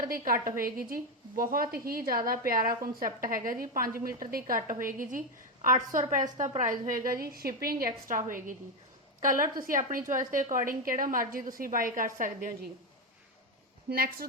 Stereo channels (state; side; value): normal; both; correlation 0.09